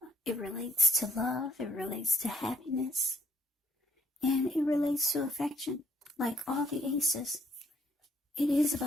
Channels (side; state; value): both; normal; correlation 0.66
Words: It relates to love, it relates to happiness, and it relates to affection. Like all the aces, it is